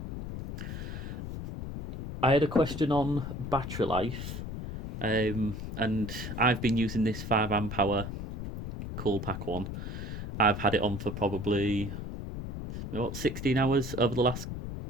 I had a question on battery life, and I've been using this 5 amp hour cool pack one. I've had it on for probably 16 hours over the last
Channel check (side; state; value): left; noise; rumble, 7 dB below the sound